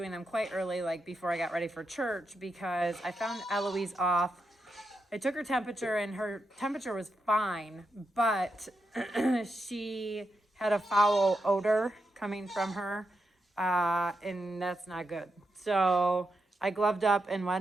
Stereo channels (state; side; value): normal; both; correlation 0.85